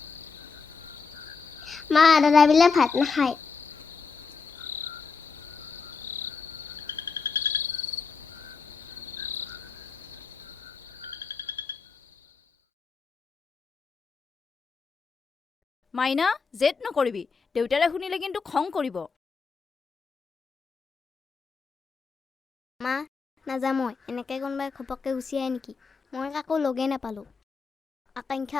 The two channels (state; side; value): quieter; right; 5.0 dB